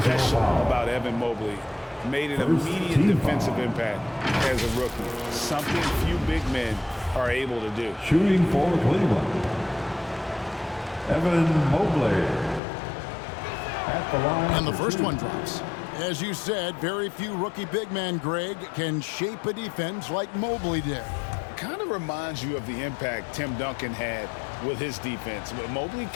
about Evan Mobley, made an immediate defensive impact as a rookie, something few big men are able to do. Shooting for Cleveland, Evan Mobley at the line. And the first one drops. As you said, very few rookie big men, Greg, can shape a defense like Mobley did. Kind of reminds you of the impact Tim Duncan had with his defense. But Mobley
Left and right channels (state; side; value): drops out; right; at 12.6 s